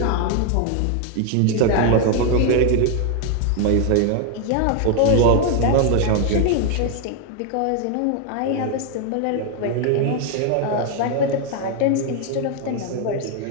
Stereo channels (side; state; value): both; different; correlation 0.00